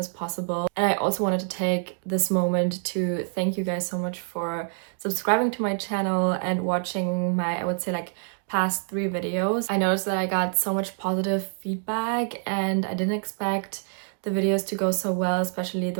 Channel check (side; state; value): left; silent; 61 dB below the other